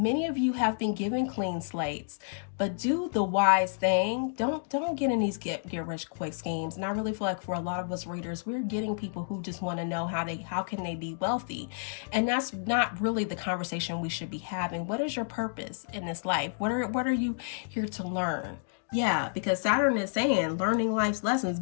of you have been given clean slates. But do the wise thing. Don't get in these get rich quick schemes. And I really feel like for a lot of us readers, we're getting people who just want to know how can they be wealthy. And that's not really the conversation we should be having. What is your purpose in this life? What are you here to learn? Yeah, because Saturn is saying learning life's lessons,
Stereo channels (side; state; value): right; silent; digital silence